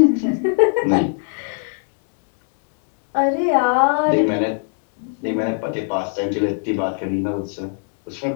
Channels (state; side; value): silent; right; 56 dB below the other